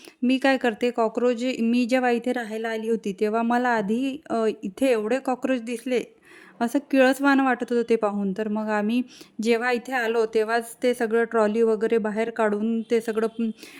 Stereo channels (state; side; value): identical; both; correlation 1.00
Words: मी काय करते, कॉकरोच मी जेव्हा इथे राहायला आली होती, तेव्हा मला आधी इथे एवढे कॉकरोच दिसले, असं किळसवाणं वाटत होतं ते पाहून. तर मग आम्ही जेव्हा इथे आलो, तेव्हाच ते सगळं ट्रॉली वगैरे बाहेर काढून ते सगळं